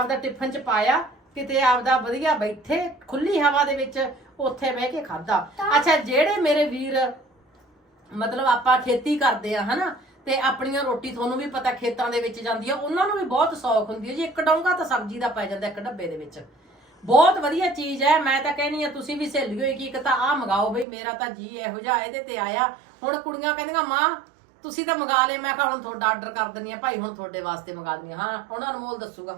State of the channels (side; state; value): left; drops out; at 20.9 s